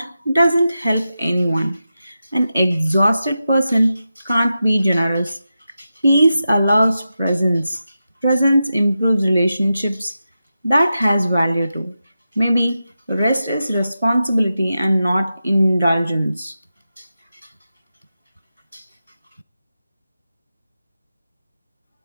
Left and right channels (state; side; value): inverted; both; correlation -0.90